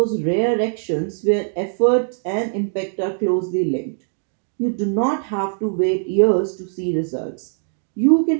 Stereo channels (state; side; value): silent; left; digital silence